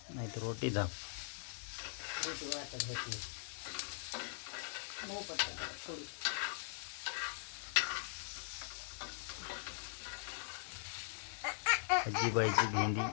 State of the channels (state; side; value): silent; right; digital silence